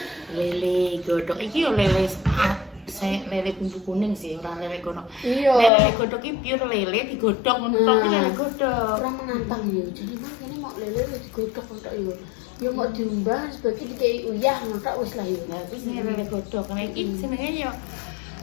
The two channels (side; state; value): right; drops out; at 5.7 s